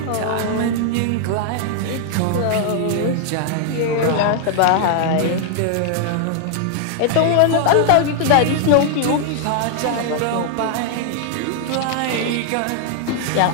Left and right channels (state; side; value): different; both; correlation 0.00